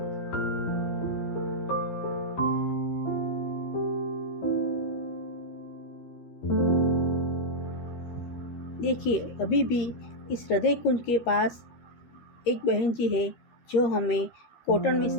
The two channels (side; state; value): right; late; 13 ms